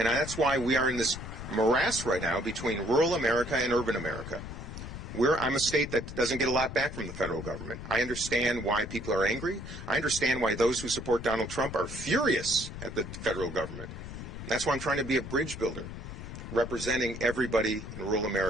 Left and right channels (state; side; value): noise; left; rumble, 9 dB below the sound